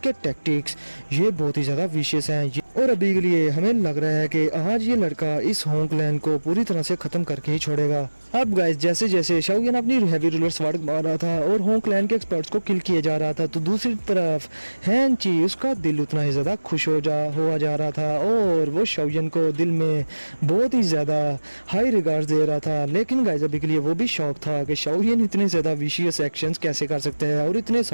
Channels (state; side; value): inverted; both; correlation -1.00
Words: टैक्टिक्स ये बहुत ही ज्यादा विशेष हैं और अभी के लिए हमें लग रहा है कि आज ये लड़का इस होंगलैंड को पूरी तरह से खत्म करके ही छोड़ेगा। अब गाइस जैसे जैसे शाओयन अपनी हैवी रूलर स्वॉर्ड मार रहा था और होंगलैंड के एक्सपर्ट्स को किल किया जा रहा था तो दूसरी तरफ हैन ची उसका दिल उतना ही ज्यादा खुश हुआ जा रहा था और वो शाओयन को दिल में बहुत ही ज्यादा हाई रिगार्ड दे रहा था। लेकिन गाइस अभी के लिए वो भी शौक था कि शाओयन इतने ज्यादा विशियस एक्शंस कैसे कर सकते हैं और इतने